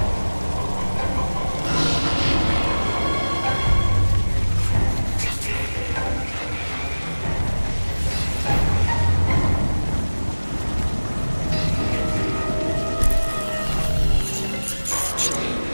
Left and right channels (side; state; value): both; inverted; correlation -1.00